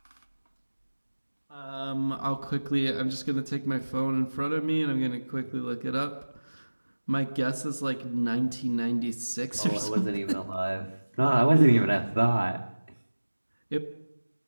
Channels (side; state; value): both; inverted; correlation -1.00